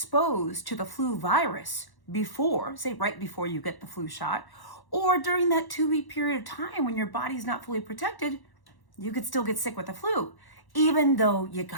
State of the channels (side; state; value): right; late; 1.1 ms